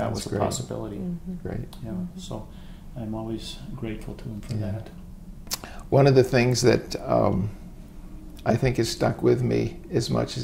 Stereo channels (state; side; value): identical; both; correlation 1.00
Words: was a possibility. Great. Yeah. So I'm always grateful to him for that. One of the things that I think has stuck with me as much